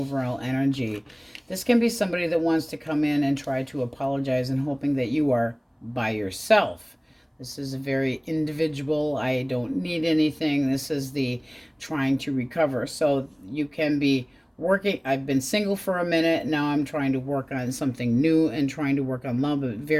energy. This can be somebody that wants to come in and try to apologize and hoping that you are by yourself. This is a very individual, I don't need anything. This is the trying to recover. So you can be working, I've been single for a minute, now I'm trying to work on something new and trying to work on love, but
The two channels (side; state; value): both; identical; correlation 1.00